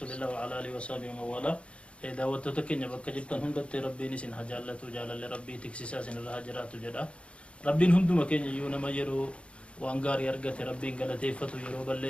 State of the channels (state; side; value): late; right; 0.060 ms